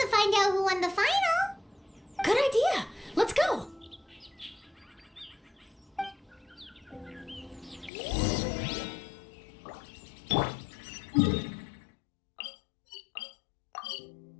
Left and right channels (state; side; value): drops out; right; at 7.9 s